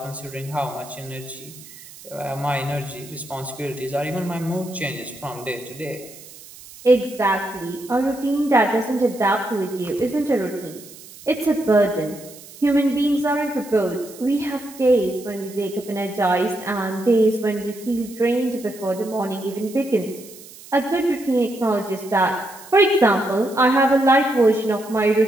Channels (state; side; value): noise; right; hiss, 19 dB below the sound